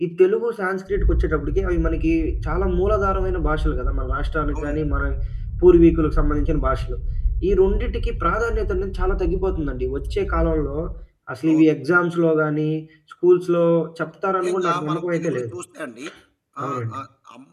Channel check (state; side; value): identical; both; correlation 1.00